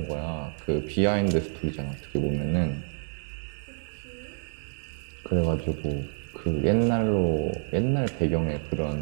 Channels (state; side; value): silent; left; digital silence